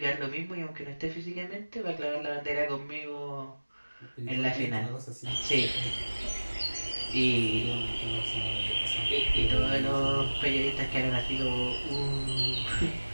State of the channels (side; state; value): both; inverted; correlation -1.00